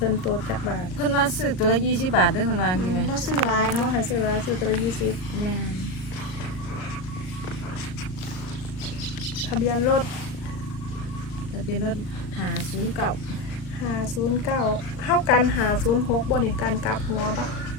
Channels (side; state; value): right; late; 38 ms